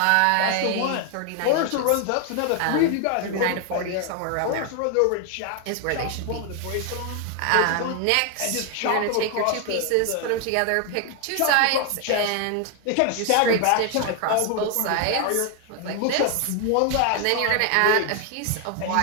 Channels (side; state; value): both; different; correlation 0.00